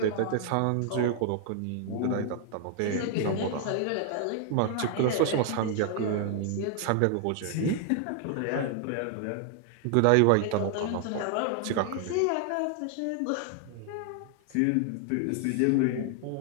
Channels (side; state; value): both; different; correlation 0.00